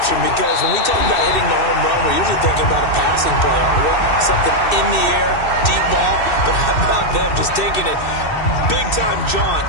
because when we talk about hitting the home run, we're usually thinking about a passing play, aren't we? Something in the air, deep ball. But how about them just taking it big-time jaunt?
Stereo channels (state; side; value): late; right; 2.6 ms